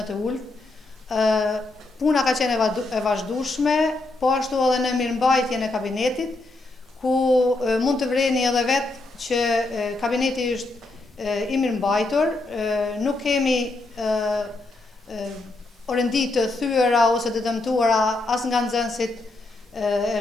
të ulët. Puna ka qenë e vazhdueshme, po ashtu edhe në mirëmbajtjen e kabinetit, ku mund të vreni edhe vetë që kabineti është i mirëmbajtur, nuk kemi orendi të thyera ose të dëmtuara as nga nxënësit e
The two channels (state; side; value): quieter; right; 3.0 dB